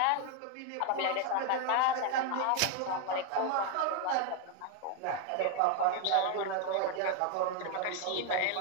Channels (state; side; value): different; both; correlation 0.01